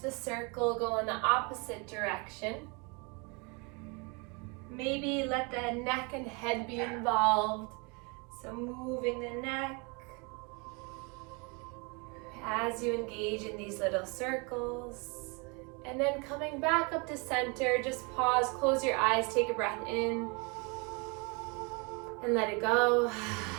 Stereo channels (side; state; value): left; quieter; 31.1 dB